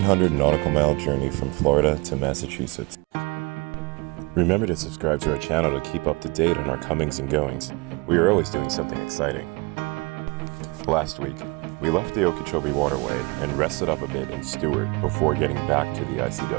nautical mile journey from Florida to Massachusetts. Remember to subscribe to our channel to keep up to date on our comings and goings. We are always doing something exciting. Last week, we left the Okeechobee Waterway and rested up a bit in Stuart before getting back to the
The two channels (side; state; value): left; quieter; 27.3 dB